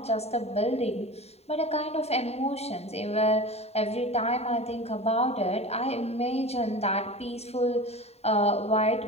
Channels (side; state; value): right; late; 0.30 ms